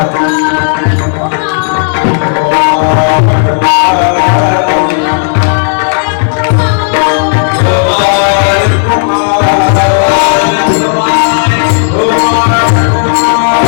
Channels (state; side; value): silent; right; digital silence